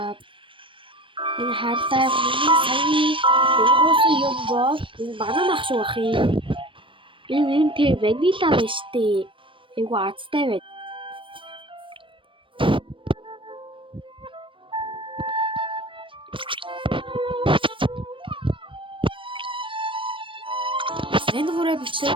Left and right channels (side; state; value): left; late; 0.25 ms